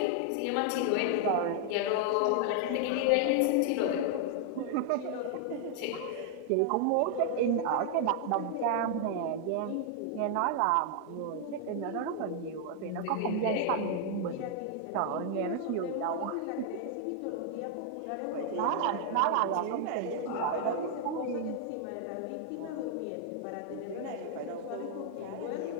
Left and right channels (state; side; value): different; both; correlation 0.00